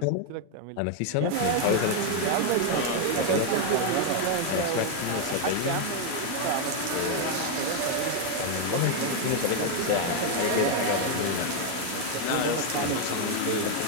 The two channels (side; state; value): both; different; correlation 0.01